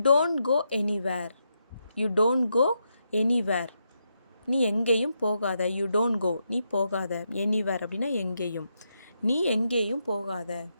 don't go anywhere. You don't go anywhere. நீ எங்கேயும் போகாத. யூ டோன்ட் கோ, நீ போகாத. எனிவேர் அப்படின்னா எங்கேயும். நீ எங்கேயும் போகாத.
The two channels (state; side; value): inverted; both; correlation -0.83